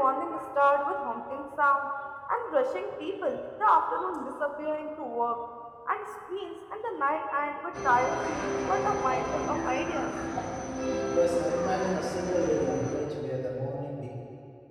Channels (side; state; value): both; identical; correlation 1.00